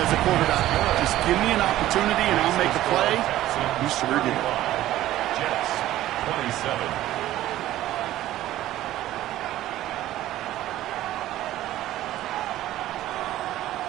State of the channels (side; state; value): left; quieter; 14.3 dB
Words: a quarterback, just give me an opportunity and I'll make a play. You sure did. Jets, 27.